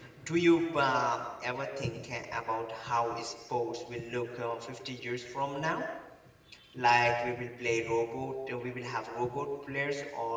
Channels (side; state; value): both; identical; correlation 1.00